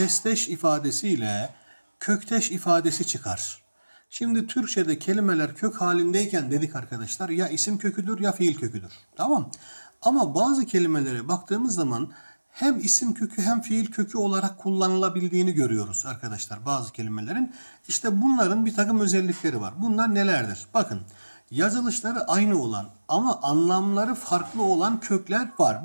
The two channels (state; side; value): inverted; both; correlation -1.00